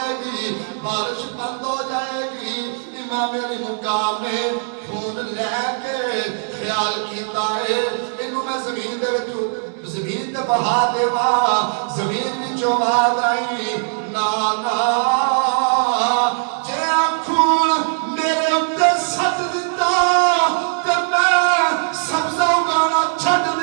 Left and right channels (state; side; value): silent; left; 66 dB below the other